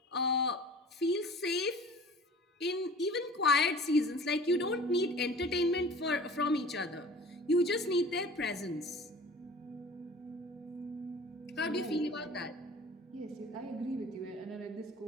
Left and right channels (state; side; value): normal; both; correlation 0.44